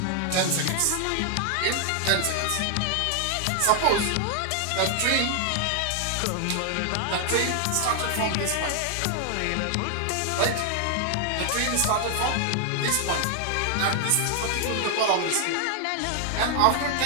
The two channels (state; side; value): different; both; correlation 0.00